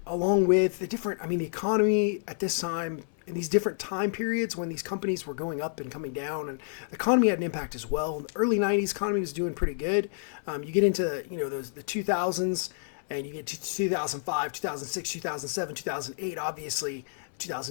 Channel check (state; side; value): silent; right; 58 dB below the other